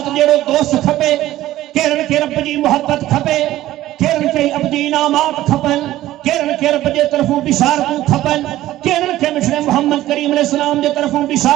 जेड़ो दोस्त खपे, केरन के रब जी मोहब्बत खपे, केरन के अब्दी इनामात खपन, केरन के रब जे तरफों बिशारतूं खपन, केरन के मिठड़े मोहम्मद करीम अलैहि सलाम जे तरफों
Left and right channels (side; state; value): left; quieter; 14.8 dB